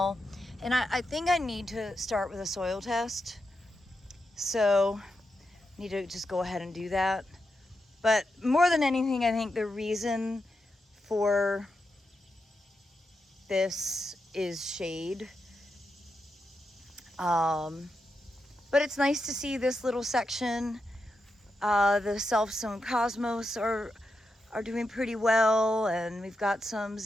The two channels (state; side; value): normal; both; correlation 0.86